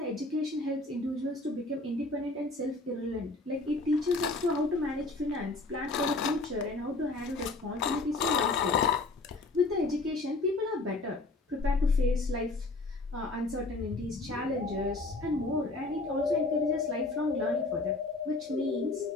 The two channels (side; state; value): right; quieter; 3.2 dB